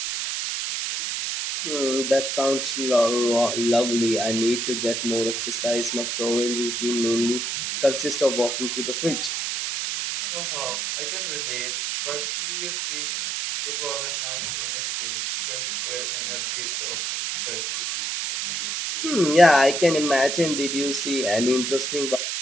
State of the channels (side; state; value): right; noise; hiss, 2 dB below the sound